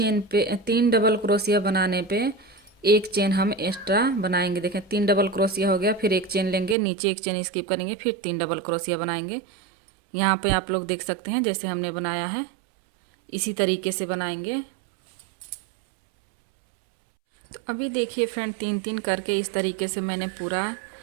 पे 3 डबल क्रोशिया बनाने पे एक चेन हम एक्स्ट्रा बनाएंगे। देखें, 3 डबल क्रोशिया हो गया। फिर एक चेन लेंगे, नीचे एक चेन स्किप करेंगे, फिर 3 डबल क्रोशिया बनाएंगे। यहाँ पे आप लोग देख सकते हैं जैसे हमने बनाया है, इसी तरीके से बनाएंगे। तो अभी देखिए फ्रेंड, 3 करके इस तरीके से मैंने पूरा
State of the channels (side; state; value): left; drops out; at 6.8 s